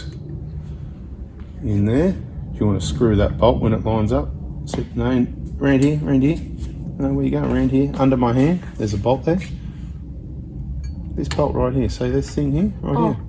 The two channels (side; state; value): both; identical; correlation 1.00